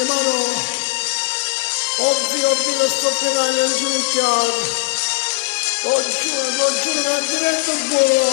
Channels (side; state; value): right; silent; digital silence